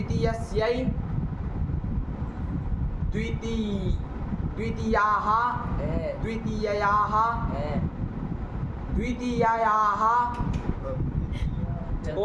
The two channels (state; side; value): identical; both; correlation 1.00